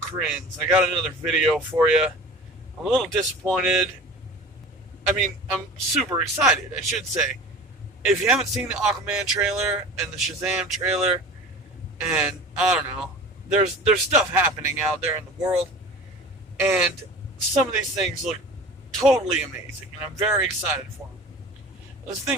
I got another video for you. I'm a little disappointed. I'm super excited, I should say. If you haven't seen the Aquaman trailer and the Shazam trailer, and I don't know, there's stuff happening out there in the world, and some of these things look totally amazing, and I'm very excited for them. The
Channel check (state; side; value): normal; both; correlation 0.38